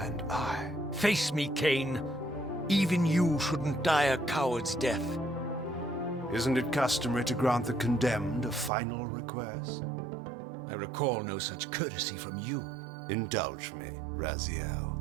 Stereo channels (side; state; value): left; drops out; at 8.7 s